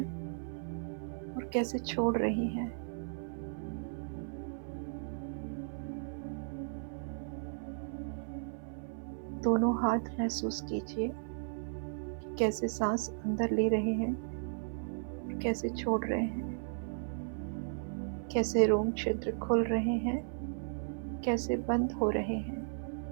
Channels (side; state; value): left; silent; 54 dB below the other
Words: और कैसे छोड़ रही हैं। दोनों हाथ महसूस कीजिए कि कैसे सांस अंदर ले रहे हैं और कैसे छोड़ रहे हैं। कैसे रोम छिद्र खुल रहे हैं, कैसे बंद हो रहे हैं।